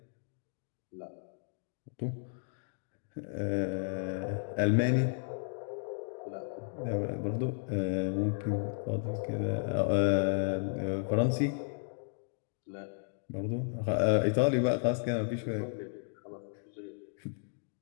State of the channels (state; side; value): silent; right; digital silence